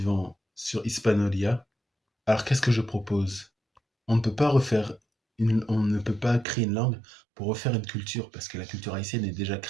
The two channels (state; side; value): drops out; left; at 6.5 s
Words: sur Hispanolia. Alors qu'est-ce que je propose? On ne peut pas on ne peut pas créer une langue pour refaire une culture, parce que la culture haïtienne est déjà